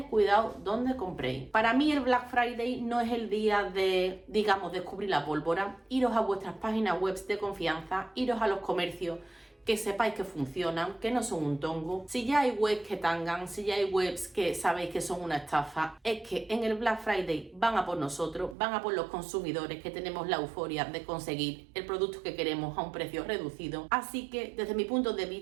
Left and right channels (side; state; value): left; drops out; at 18.6 s